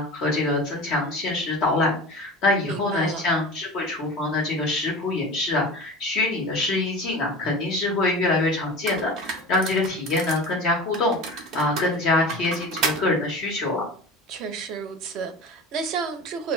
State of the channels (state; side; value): normal; both; correlation 0.34